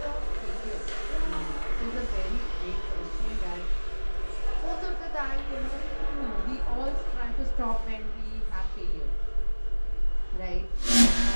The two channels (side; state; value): both; inverted; correlation -1.00